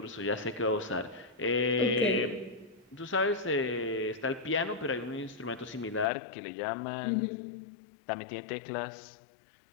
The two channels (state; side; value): drops out; right; at 6.1 s